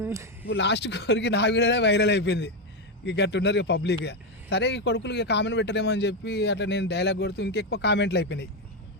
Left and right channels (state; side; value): normal; both; correlation 0.08